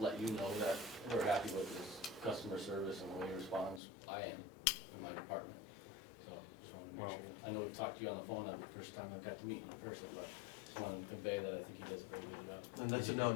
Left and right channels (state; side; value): drops out; right; at 3.8 s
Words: you know that we're happy with his customer service and the way he responds. I am, in my department. So, just wanted to make Well- sure. I know we talked to you on the phone the first time I got to meet you in person, but just wanted to convey that I think he does a very good job. And that's a